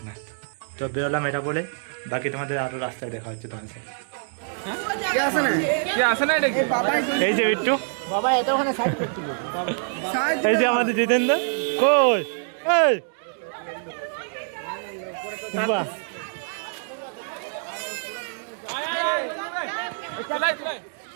তো বেরোলাম এটা বলে, বাকি তোমাদের আরও রাস্তায় দেখা হচ্ছে তোমার সাথে। এই যে বিট্টু, এই যে আমাদের জিতেন্দ্র, কই এই বাহ,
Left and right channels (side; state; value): left; silent; digital silence